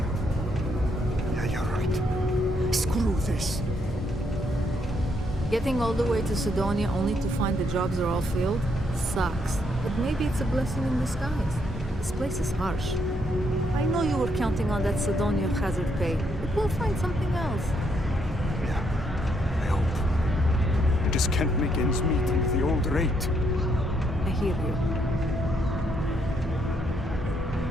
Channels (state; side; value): normal; both; correlation 0.74